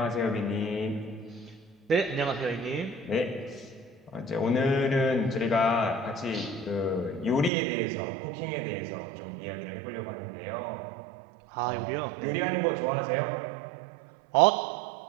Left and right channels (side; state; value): left; drops out; at 7.5 s